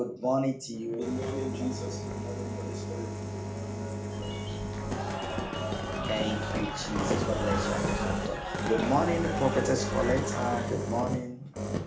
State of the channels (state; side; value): identical; both; correlation 1.00